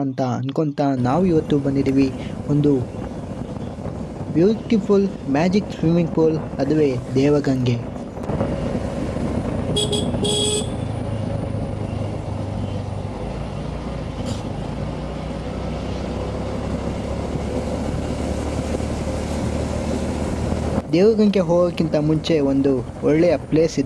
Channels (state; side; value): identical; both; correlation 1.00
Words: ಅಂತ ಅನ್ಕೊತಾ ನಾವು ಇವತ್ತು ಬಂದಿದ್ದೀವಿ ಒಂದು ಬ್ಯೂಟಿಫುಲ್ ಮ್ಯಾಜಿಕ್ ಸ್ವಿಮ್ಮಿಂಗ್ ಪೂಲ್, ಅದುವೇ ದೇವಗಂಗೆ. ದೇವಗಂಗೆ ಹೋಗೋಕ್ಕಿಂತ ಮುಂಚೆ ಒಂದು ಒಳ್ಳೆಯ ಪ್ಲೇಸ್